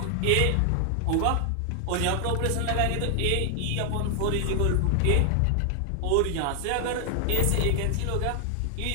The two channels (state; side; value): different; both; correlation 0.00